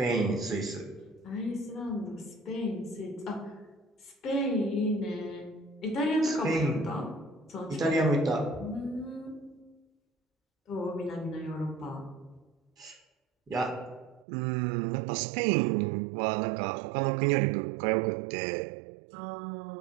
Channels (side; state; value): left; drops out; at 14.2 s